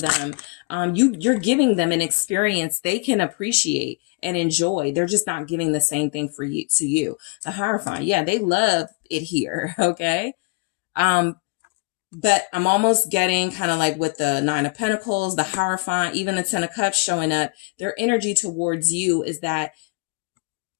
You're giving them an experience they can appreciate and enjoy. They're just not giving the same thing to you. The Hierophant, yeah, they love it here. Okay. But I'm almost getting kind of like with the Nine of Pentacles, the Hierophant, even the Ten of Cups showing up. Their energy towards you is that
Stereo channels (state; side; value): quieter; right; 31.7 dB